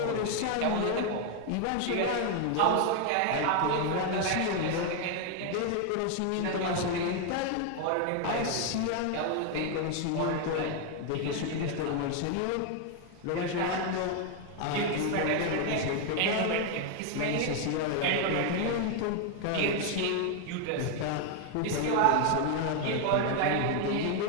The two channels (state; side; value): different; both; correlation 0.01